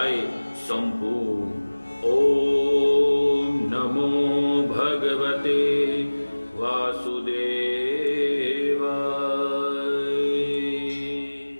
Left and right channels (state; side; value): inverted; both; correlation -1.00